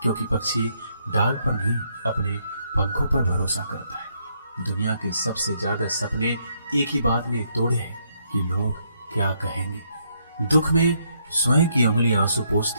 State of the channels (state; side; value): inverted; both; correlation -0.73